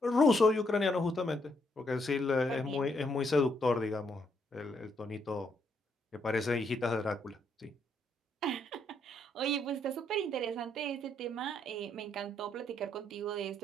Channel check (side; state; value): both; normal; correlation 0.74